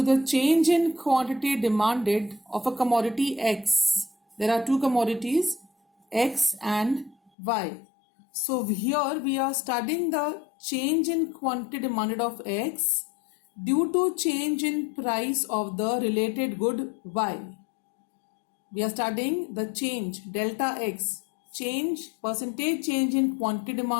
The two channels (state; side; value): drops out; right; at 7.3 s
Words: the change in quantity demanded of a commodity X. There are two commodities, X and Y. So here we are studying the change in quantity demanded of X due to change in price of the related good Y. We are studying the change, delta X, percentage change in quantity